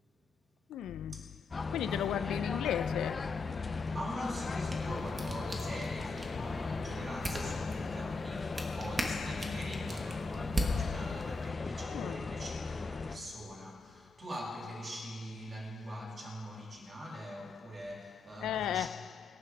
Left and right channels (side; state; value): right; quieter; 3.5 dB